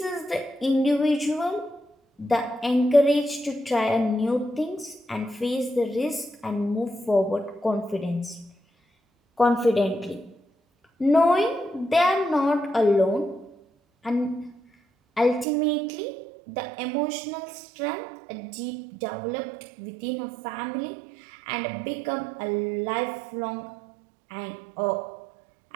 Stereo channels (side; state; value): left; drops out; at 15.5 s